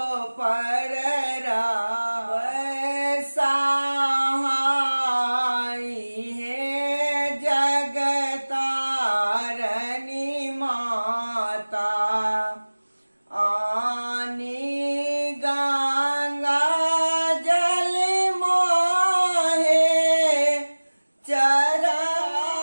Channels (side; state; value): both; inverted; correlation -1.00